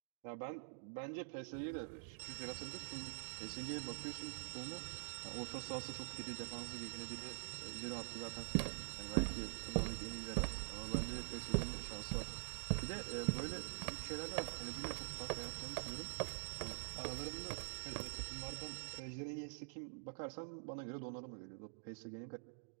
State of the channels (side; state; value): left; silent; digital silence